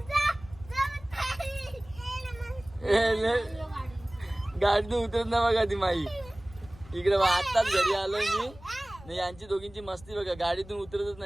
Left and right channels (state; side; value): noise; left; rumble, 20 dB below the sound